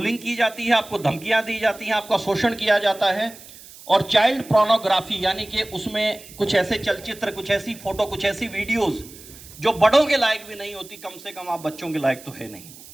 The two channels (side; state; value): right; noise; hiss, 19 dB below the sound